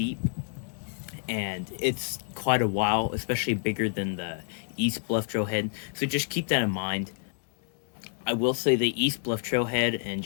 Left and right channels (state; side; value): silent; right; digital silence